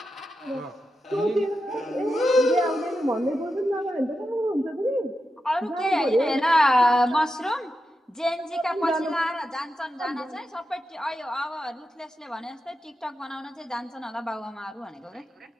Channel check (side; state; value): both; normal; correlation 0.89